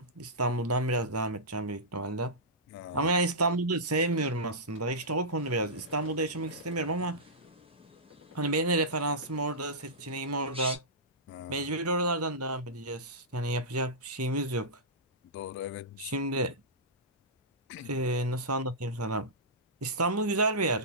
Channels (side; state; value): both; normal; correlation -0.16